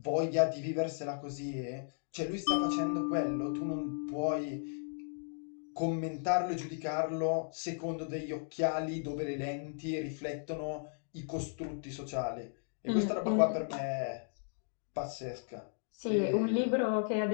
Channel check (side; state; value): right; silent; digital silence